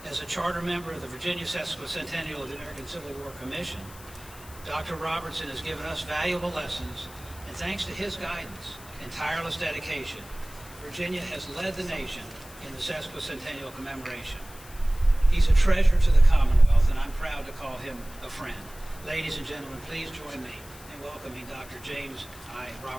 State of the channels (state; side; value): noise; left; hiss, 19 dB below the sound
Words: As a charter member of the Virginia Sesquicentennial of the American Civil War Commission, Dr. Robertson has given us valuable lessons, and thanks to his guidance and tireless dedication, Virginia has led the nation in the Sesquicentennial commemoration. He's a treasure to the Commonwealth, and I'm proud to call him a friend. Ladies and gentlemen, please join me in welcoming Dr. James I.